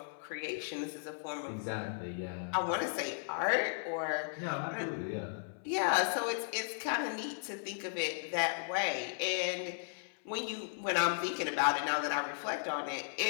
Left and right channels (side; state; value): right; silent; 54 dB below the other